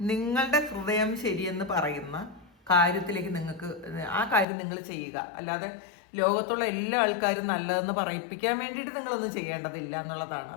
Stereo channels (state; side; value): drops out; right; at 4.5 s